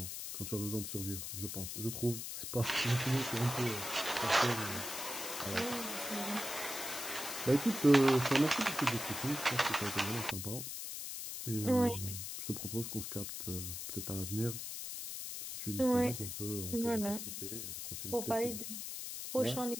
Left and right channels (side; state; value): left; noise; hiss, 6 dB below the sound